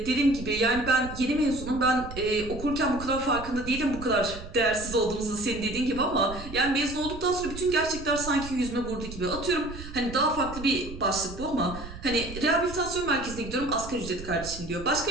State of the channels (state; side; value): noise; right; rumble, 12 dB below the sound